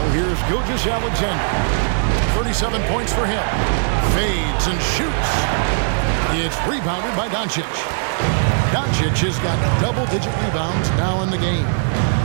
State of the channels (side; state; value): left; silent; digital silence